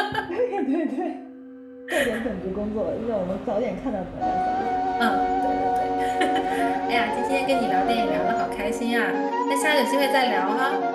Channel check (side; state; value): both; identical; correlation 1.00